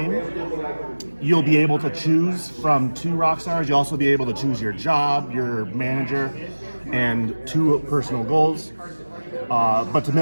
you'll be able to choose from 2 rock stars. You'll also be able to choose your job, your manager, and 2 personal goals. But to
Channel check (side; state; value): both; inverted; correlation -1.00